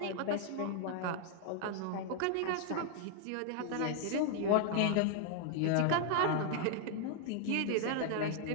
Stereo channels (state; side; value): different; both; correlation 0.00